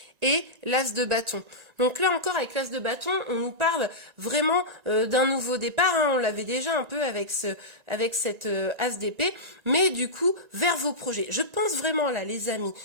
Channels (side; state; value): left; late; 1.9 ms